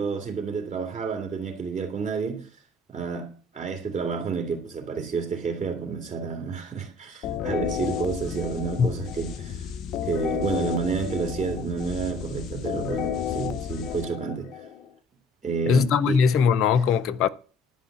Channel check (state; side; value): normal; both; correlation 0.54